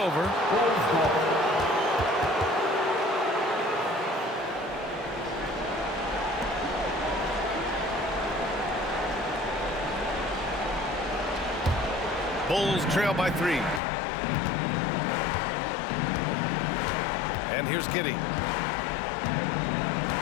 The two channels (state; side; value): drops out; right; at 13.8 s